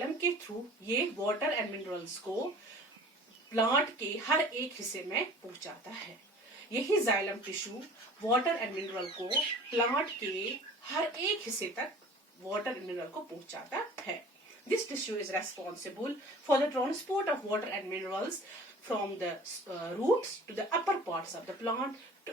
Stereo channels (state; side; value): normal; both; correlation 0.45